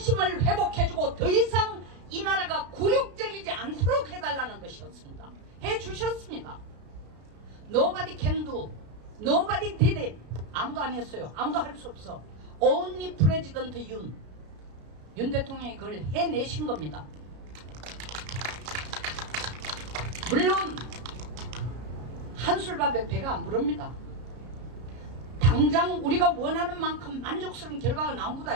회복해주고 더 이상 이 나라가 굴욕적이지 않도록 해달라는 것이었습니다. 해주셨습니다. Nobody can do, nobody did it. 아무도 안 했어요. 아무도 할 수 없어. Only President 윤 대통령이 그걸 해내신 겁니다. 물론 한술밥에 배가 안 부릅니다. 당장 우리가 원하는 만큼 만족스러운 결과가 나온 것도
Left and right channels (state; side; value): late; left; 33 ms